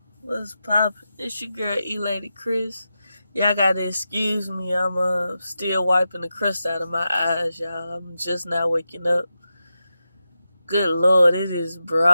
What's poppin'? It's your girl ELady Chrys. Y'all gotta excuse me, I'm still wiping the crust out of my eyes, y'all. I'm just now waking up. Good lord, it is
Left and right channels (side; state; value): both; inverted; correlation -0.90